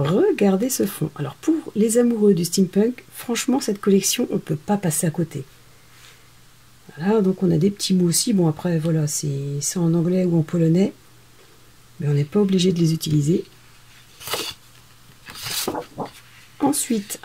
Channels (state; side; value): identical; both; correlation 1.00